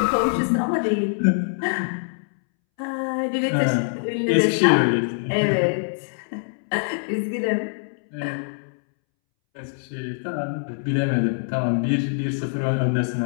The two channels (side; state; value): right; silent; 63 dB below the other